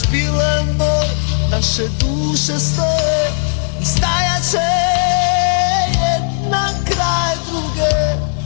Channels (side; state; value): right; silent; digital silence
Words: bile moj, naše duše stoje i stajat će jedna kraj druge.